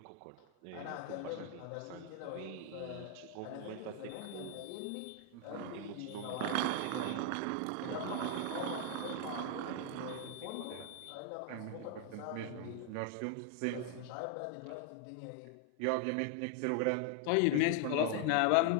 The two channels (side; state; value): both; different; correlation 0.00